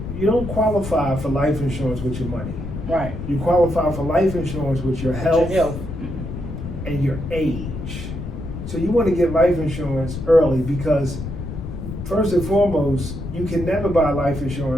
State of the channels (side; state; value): left; noise; rumble, 8 dB below the sound